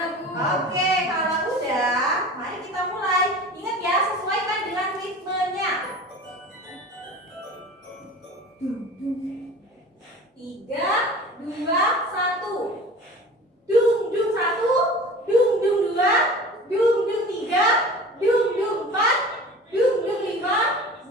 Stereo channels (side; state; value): both; normal; correlation 0.39